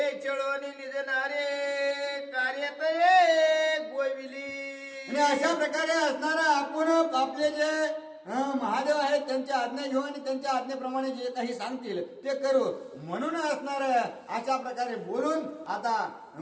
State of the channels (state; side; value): identical; both; correlation 1.00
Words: चळवणी निजणारे कार्यत गोविली. आणि अशा प्रकारे असणार आपण आपले जे महादेव आहेत त्यांच्या आज्ञा घेऊ आणि त्यांच्या आज्ञेप्रमाणे जे काही सांगतील ते करू म्हणून असणार अशा प्रकारे बोलून आता